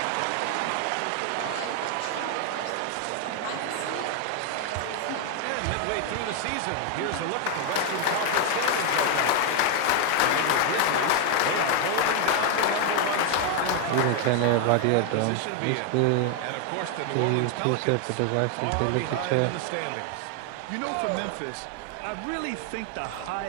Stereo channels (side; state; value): both; different; correlation 0.00